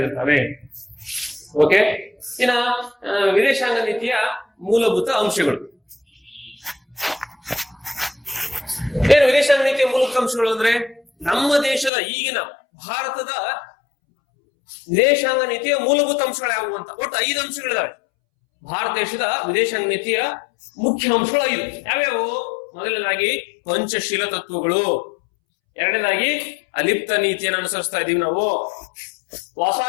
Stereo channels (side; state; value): right; drops out; at 11.9 s